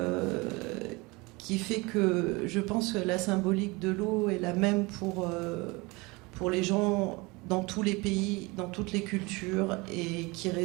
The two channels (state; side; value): quieter; left; 25.0 dB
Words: fait que je pense que la symbolique de l'eau est la même pour les gens dans tous les pays, dans toutes les cultures, et qui